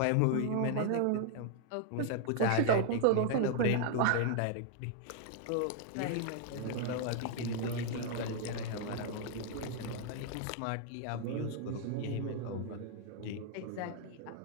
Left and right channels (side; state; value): both; different; correlation 0.00